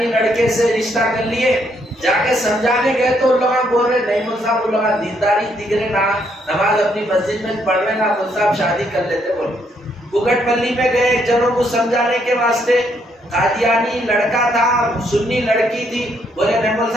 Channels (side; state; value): both; normal; correlation 0.72